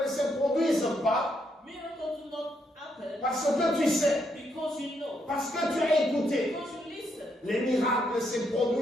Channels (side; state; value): both; normal; correlation 0.77